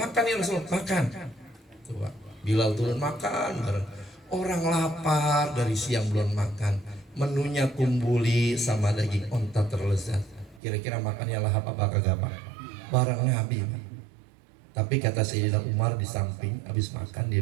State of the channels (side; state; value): left; drops out; at 10.6 s